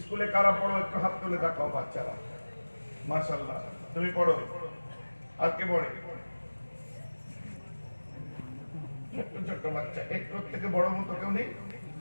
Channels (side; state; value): both; inverted; correlation -1.00